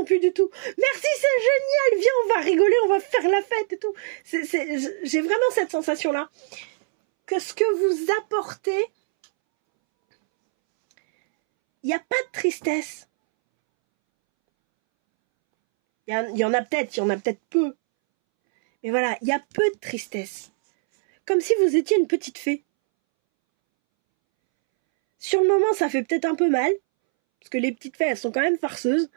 plus du tout. Merci, c'est génial, viens on va rigoler, on va faire la fête et tout. J'ai vraiment cette sensation là que ce que vous apportez, il n'y a pas de tristesse. Il y en a peut-être peu. Mais voilà, il y a peu de tristesse. Comme si vous étiez une petite fée. Sur le moment ça fait peut-être un peu mal. Parce que les petites fées, elles sont quand même farceuses.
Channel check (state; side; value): silent; left; 64 dB below the other